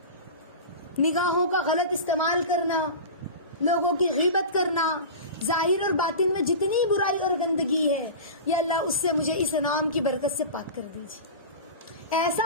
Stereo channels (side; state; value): both; inverted; correlation -0.31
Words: نگاہوں کا غلط استعمال کرنا، لوگوں کی غیبت کرنا، ظاہر اور باطن میں جتنی برائی اور گندگی ہے، یا اللہ اس سے مجھے اس نام کی برکت سے پاک کر دیجیے۔ ایسا